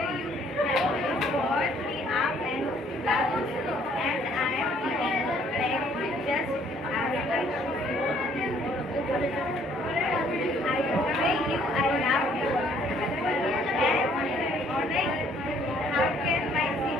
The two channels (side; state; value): both; normal; correlation 0.62